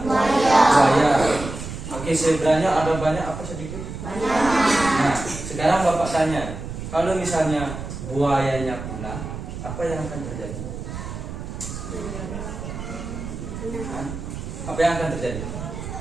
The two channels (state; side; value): noise; right; rumble, 8 dB below the sound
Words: buaya. Oke, zebranya ada banyak apa sedikit? Nah, sekarang Bapak tanya, kalau misalnya buayanya punah, apa yang akan terjadi? Apa yang akan terjadi?